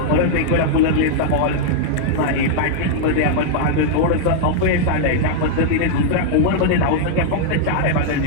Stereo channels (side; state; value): both; different; correlation -0.01